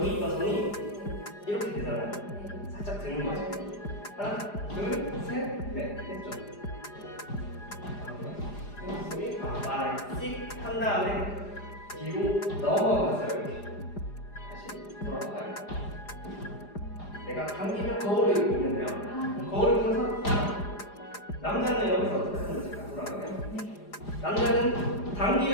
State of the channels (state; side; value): late; right; 4.9 ms